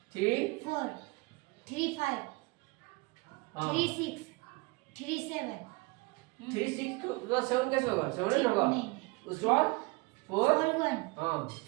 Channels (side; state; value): left; quieter; 25.6 dB